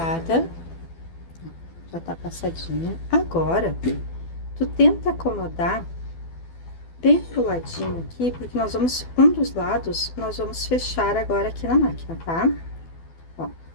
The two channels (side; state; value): right; late; 12 ms